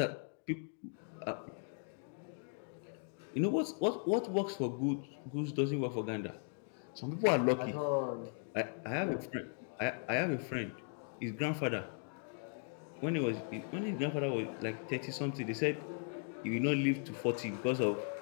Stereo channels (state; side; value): silent; right; 53 dB below the other